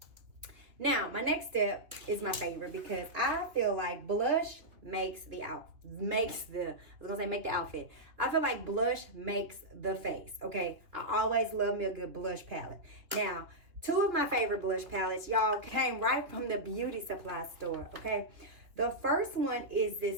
Now, my next step is my favorite because I feel like blush make the outfit. I feel like blush makes the face, okay? I always love me a good blush palette. Now, two of my favorite blush palettes, y'all, came right from the beauty supply store, okay? The first one is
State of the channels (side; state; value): left; late; 2.8 ms